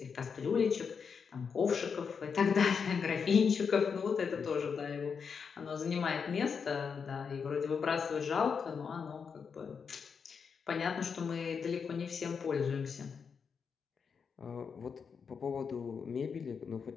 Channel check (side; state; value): right; quieter; 6.1 dB